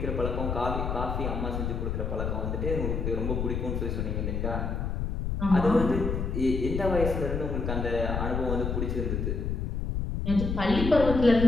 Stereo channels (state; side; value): noise; left; rumble, 2 dB below the sound